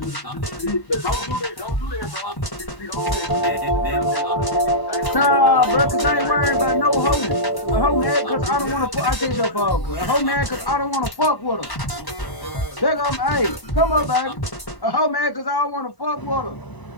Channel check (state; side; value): late; right; 1.0 ms